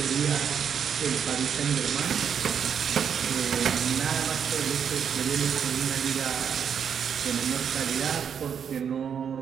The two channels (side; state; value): left; quieter; 7.6 dB